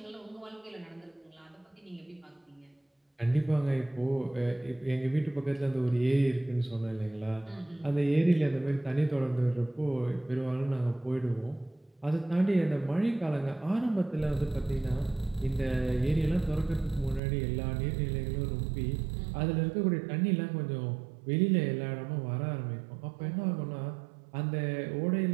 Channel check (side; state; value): left; drops out; at 17.2 s